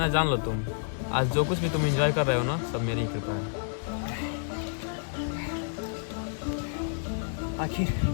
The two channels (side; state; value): right; silent; digital silence